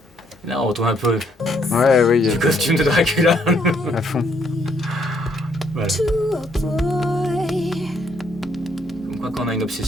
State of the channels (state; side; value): normal; both; correlation 0.70